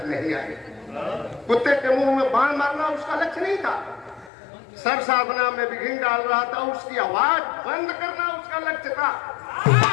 नहीं आई। कुत्ते के मुंह में बाण मारना उसका लक्ष्य नहीं था, सर साधना में विघ्न डाल रहा था, उसकी आवाज बंद करना उसका लक्ष्य था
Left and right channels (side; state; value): right; drops out; at 4.3 s